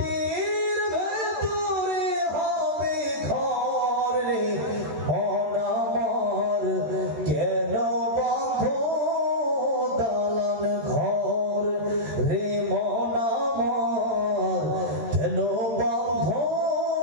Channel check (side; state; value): left; late; 13 ms